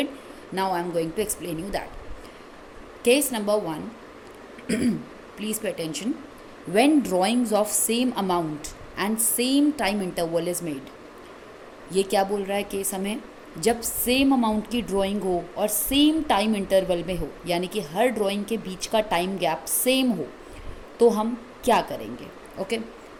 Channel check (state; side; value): identical; both; correlation 1.00